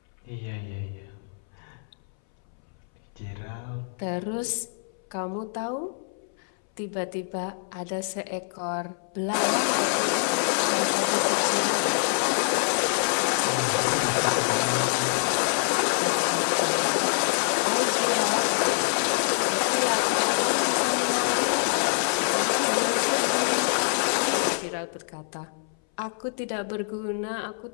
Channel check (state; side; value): silent; right; 61 dB below the other